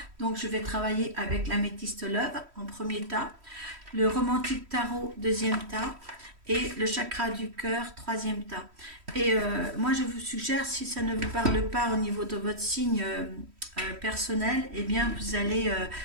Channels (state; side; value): late; left; 3.1 ms